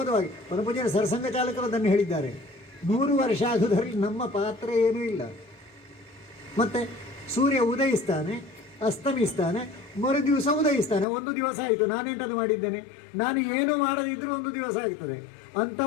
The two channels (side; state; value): right; drops out; at 11.1 s